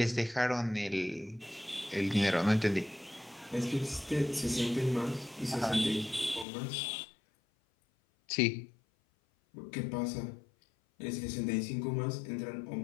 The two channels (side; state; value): right; drops out; at 6.5 s